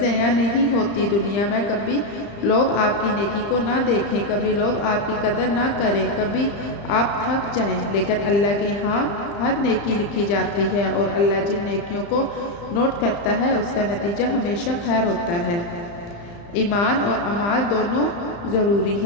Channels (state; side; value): late; right; 35 ms